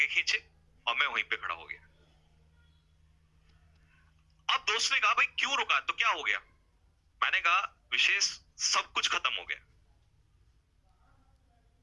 खींचे और मैं वहीं पे खड़ा हो गया। अब दोस्त ने कहा भाई क्यों रुका, तो क्या हो गया? मैंने कहा विशेष सब कुछ खत्म हो गया।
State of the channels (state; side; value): identical; both; correlation 1.00